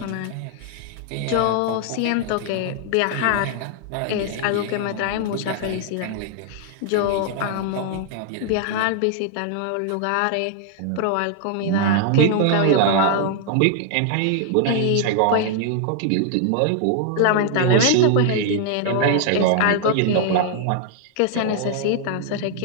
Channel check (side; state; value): both; different; correlation 0.00